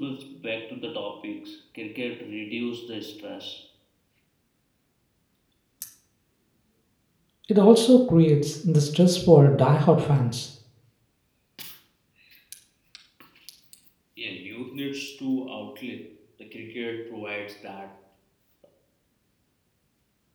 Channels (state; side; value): identical; both; correlation 1.00